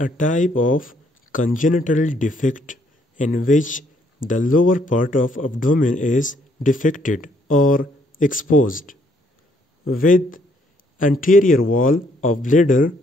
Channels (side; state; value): both; normal; correlation 0.69